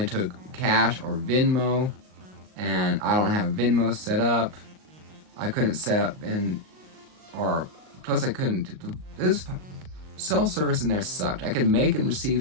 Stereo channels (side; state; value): left; late; 38 ms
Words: took cash or Venmo, and I don't have Venmo set up. I couldn't set up, plus I couldn't. It was cell service in there sucked. I could make and